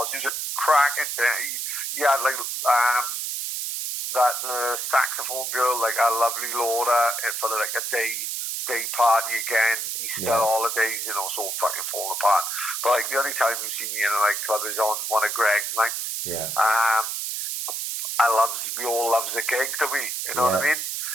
He was a cracking thing. He had like that saxophone girl, like a lovely Laura, for like a day party again. Easter holidays, you know, so fucking falling apart. But like the only time you see me in a nightclub is on one of Greg's nights. Yeah. We all loves a gig, do we? You know what I mean?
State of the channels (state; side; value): noise; right; hiss, 3 dB below the sound